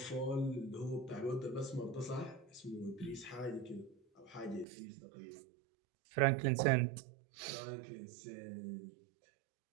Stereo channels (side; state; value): left; drops out; at 4.7 s